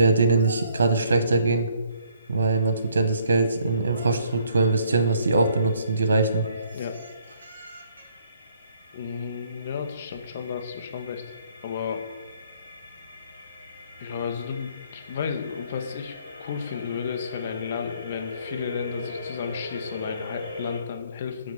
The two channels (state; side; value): inverted; both; correlation -0.64